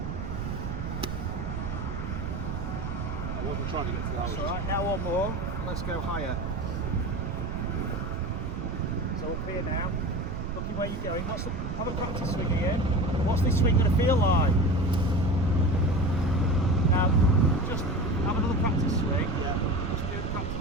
I wasn't trying to get to the That's hole. alright, now one more, and let's go higher. So up here now, looking where you're going. Have a practice swing again. What's this swing going to feel like? Now, just have another practice swing. Yeah. Just do the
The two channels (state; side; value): noise; right; rumble, 4 dB below the sound